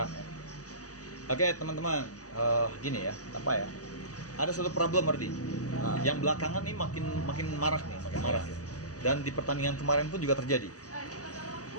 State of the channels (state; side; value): late; right; 0.67 ms